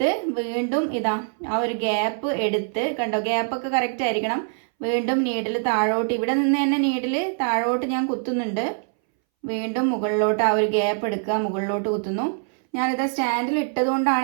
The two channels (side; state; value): left; silent; 62 dB below the other